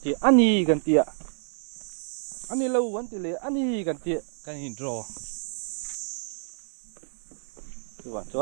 đề anh đi cần tiền anh đi lâu vấn đề anh đi cần tiền cần hình rò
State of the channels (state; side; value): silent; left; 59 dB below the other